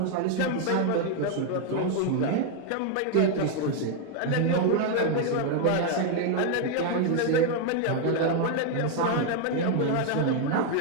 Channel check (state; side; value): different; both; correlation 0.01